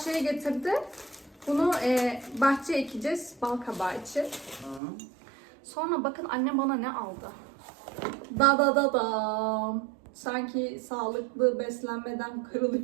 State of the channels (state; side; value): drops out; left; at 4.8 s